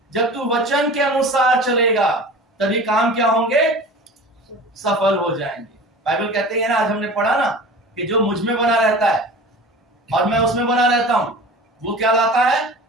जब तू वचन के अनुसार चलेगा तभी काम क्या होंगे? सफल हो जाएंगे। बाइबल कहते हैं ना, आज हमने पढ़ा ना कि जो मुझ में बना रहता है और मैं उसमें बना रहता हूं वो क्या लाता है?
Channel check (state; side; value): normal; both; correlation 0.37